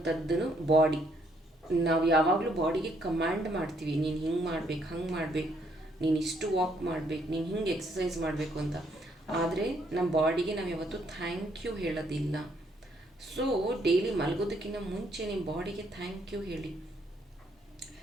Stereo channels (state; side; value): normal; both; correlation 0.70